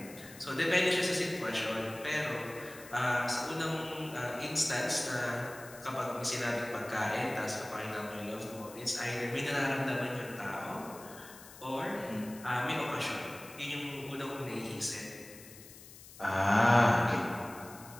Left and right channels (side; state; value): left; noise; hiss, 18 dB below the sound